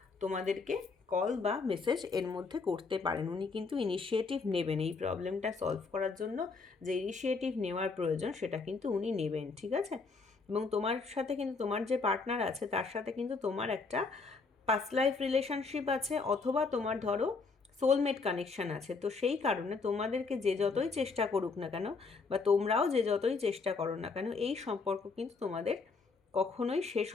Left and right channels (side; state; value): right; quieter; 4.4 dB